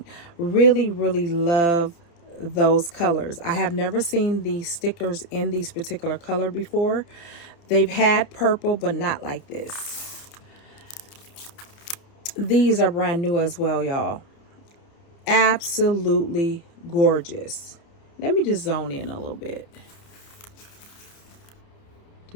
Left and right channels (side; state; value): right; late; 29 ms